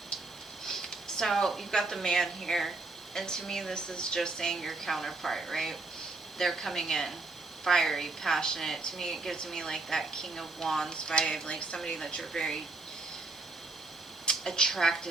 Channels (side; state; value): left; quieter; 3.4 dB